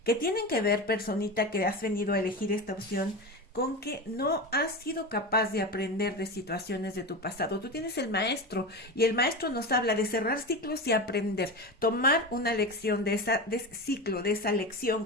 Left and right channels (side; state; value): both; normal; correlation 0.23